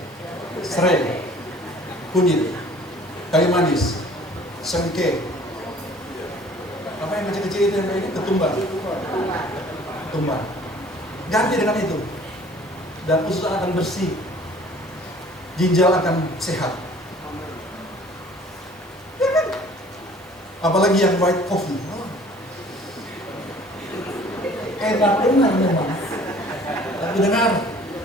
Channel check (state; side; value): normal; both; correlation 0.52